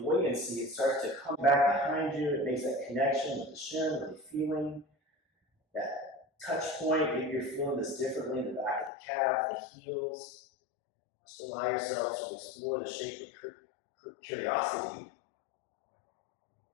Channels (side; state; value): right; drops out; at 8.9 s